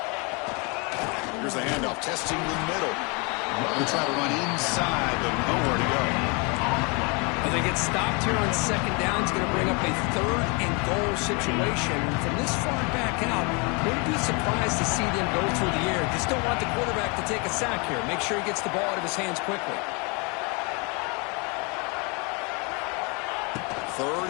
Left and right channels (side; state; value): right; quieter; 31.5 dB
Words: Here's the handoff, testing the middle. They try to run inside, but nowhere to go. Well, they get stopped here on second down. It's going to bring up a third and goal situation. From this far back out, wouldn't be surprised to see them go through the air. Just don't want the quarterback to take a sack here. Make sure he gets the ball out of his hands quickly. Third